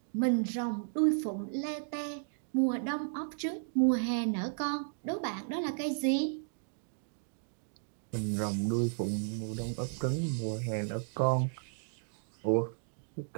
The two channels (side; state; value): left; silent; digital silence